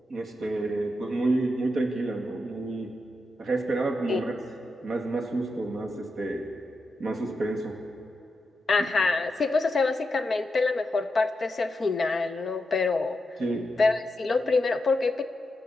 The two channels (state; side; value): normal; both; correlation 0.87